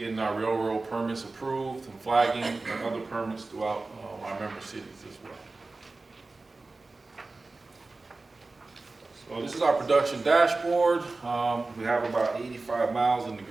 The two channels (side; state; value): left; quieter; 3.5 dB